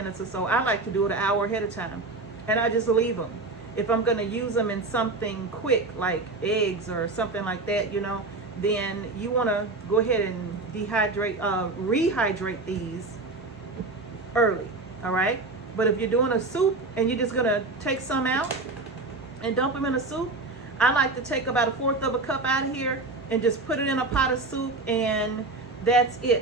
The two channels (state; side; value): quieter; left; 3.4 dB